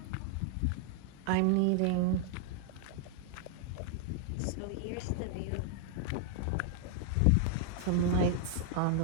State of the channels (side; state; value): both; different; correlation 0.00